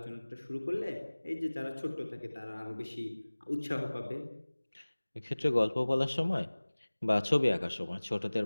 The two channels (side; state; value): both; inverted; correlation -1.00